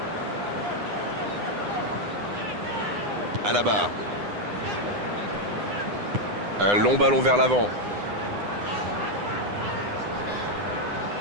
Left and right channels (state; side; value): late; left; 9.8 ms